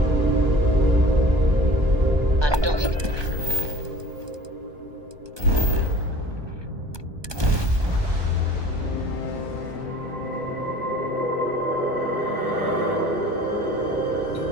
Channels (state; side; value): late; left; 1.2 ms